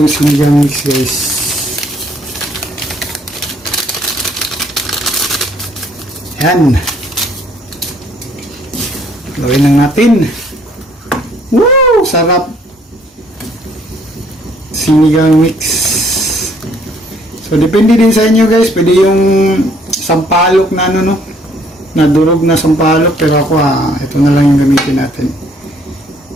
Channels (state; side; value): normal; both; correlation 0.64